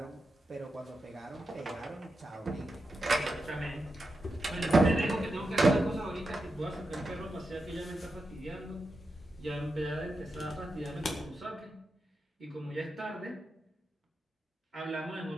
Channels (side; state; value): both; normal; correlation 0.88